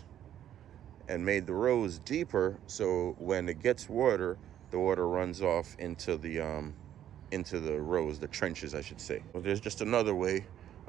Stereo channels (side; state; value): left; quieter; 10.9 dB